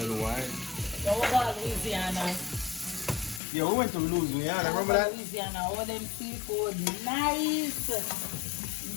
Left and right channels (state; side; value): drops out; right; at 3.4 s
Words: wine. So we go to Louisiana. Yeah, we went to Louisiana. Remember that? Louisiana, all them seafood, nice.